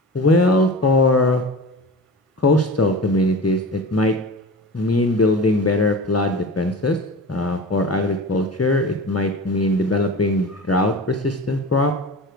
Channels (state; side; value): normal; both; correlation 0.33